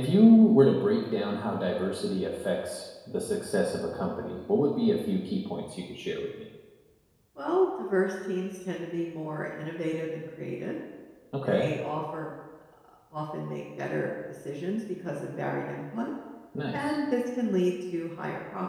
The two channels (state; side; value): identical; both; correlation 1.00